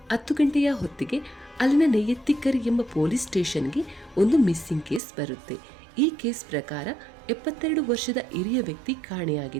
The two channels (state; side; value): drops out; left; at 5.0 s